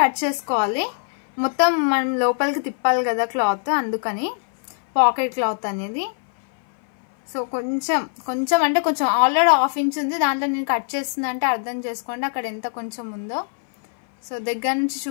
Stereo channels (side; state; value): right; silent; 58 dB below the other